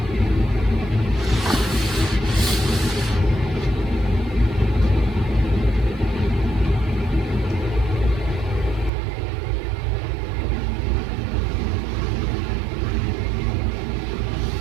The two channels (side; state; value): left; drops out; at 8.9 s